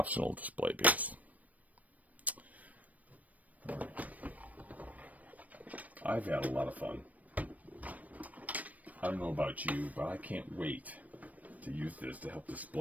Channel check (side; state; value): left; late; 0.072 ms